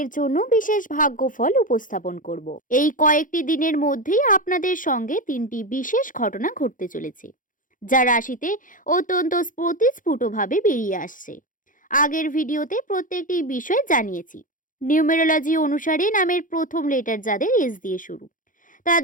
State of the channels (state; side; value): late; right; 0.39 ms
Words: জন্য বিশেষ ভাগ্যফল উপস্থাপন করব। এই কয়েকটি দিনের মধ্যেই আপনাদের সঙ্গে 3টি বিশেষ ঘটনা ঘটতে চলেছে, যা রাশিতে অত্যন্ত স্ফুটভাবে বেরিয়ে আসছে। আগের ভিডিওতে প্রত্যেকটি বিষয় জানিয়েছি। নিউমেরোলজি অনুসারে নামের প্রথম লেটার যাদের এস দিয়ে শুরু,